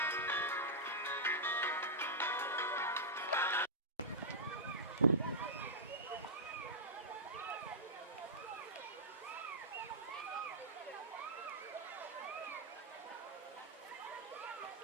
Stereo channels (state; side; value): normal; both; correlation -0.13